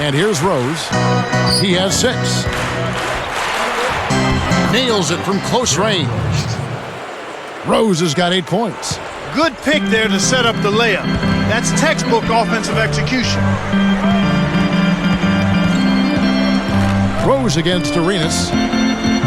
And here's Rose. He has 6. Nails it from close range. Rose has got 8 points. Good pick there to set up the layup. That's textbook offensive execution. Rose against Arenas.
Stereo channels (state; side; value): identical; both; correlation 1.00